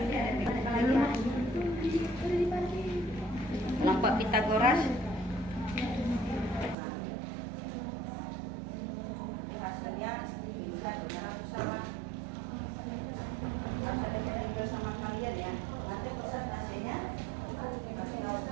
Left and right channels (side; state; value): left; drops out; at 6.8 s